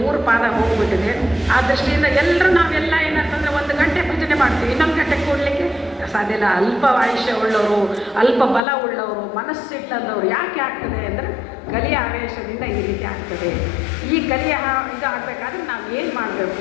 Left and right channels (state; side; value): drops out; right; at 8.6 s